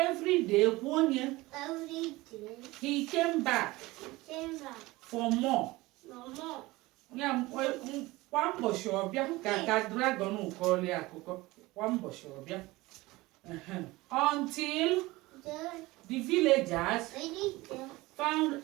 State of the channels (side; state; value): left; quieter; 20.4 dB